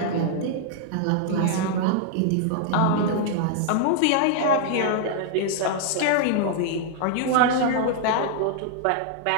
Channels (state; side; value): different; both; correlation -0.01